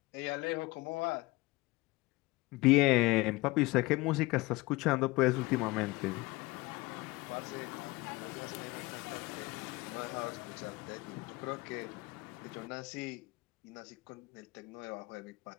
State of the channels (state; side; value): quieter; right; 21.8 dB